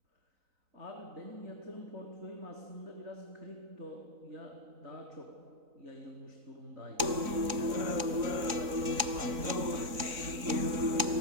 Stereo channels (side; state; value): left; late; 3.9 ms